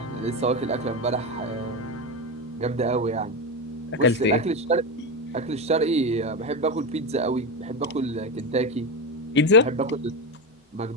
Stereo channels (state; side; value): normal; both; correlation 0.16